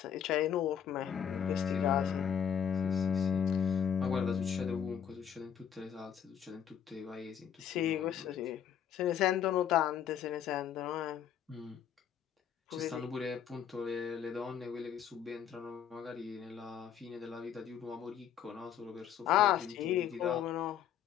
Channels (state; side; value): quieter; right; 8.8 dB